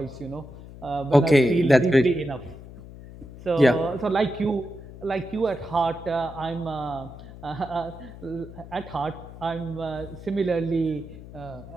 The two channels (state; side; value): noise; left; hum, 16 dB below the sound